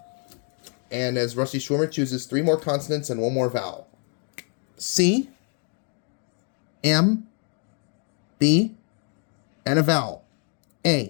And as Rusty Schwimmer chooses 3 more consonants and 1 more vowel. C, M, B, and a vowel.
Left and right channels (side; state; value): right; quieter; 38.2 dB